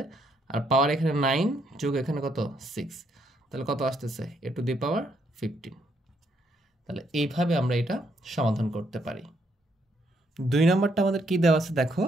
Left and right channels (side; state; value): both; normal; correlation 0.73